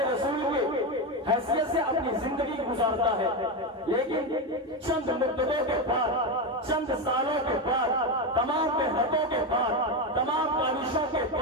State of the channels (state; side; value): normal; both; correlation 0.13